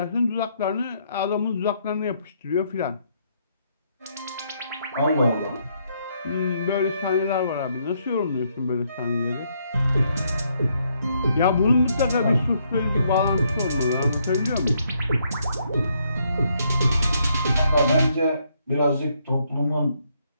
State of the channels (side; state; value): both; inverted; correlation -0.73